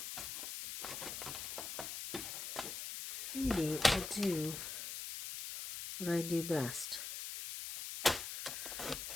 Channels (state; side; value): noise; left; hiss, 6 dB below the sound